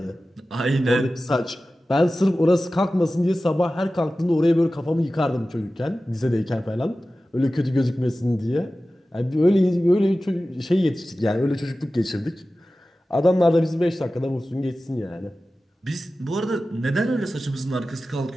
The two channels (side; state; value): both; normal; correlation 0.95